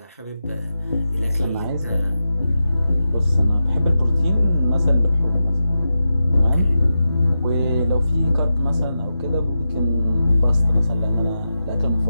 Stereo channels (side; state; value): both; inverted; correlation -0.90